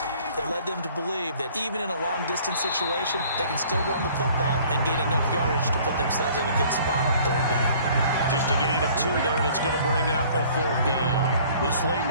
that led them to believe that even in a long-distance situation, they can still run the football and gain enough yardage to put themselves in a good spot on 3rd down. Just a gain of 2 there, and it's going to bring up a 4th down. This late in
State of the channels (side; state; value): both; inverted; correlation -0.53